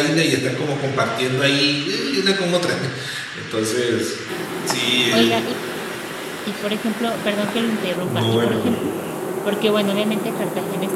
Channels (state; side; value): identical; both; correlation 1.00